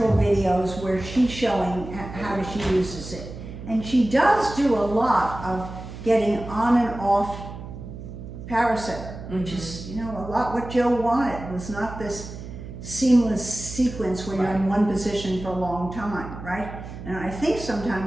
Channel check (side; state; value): right; noise; hum, 11 dB below the sound